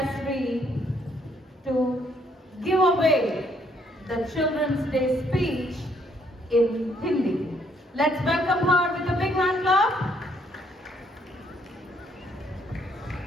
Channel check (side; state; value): both; normal; correlation 0.69